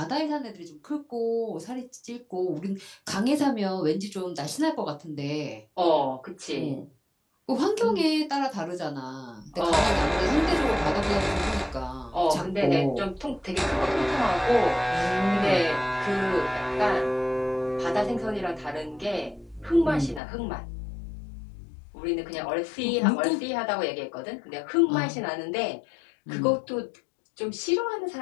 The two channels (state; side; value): drops out; right; at 20.2 s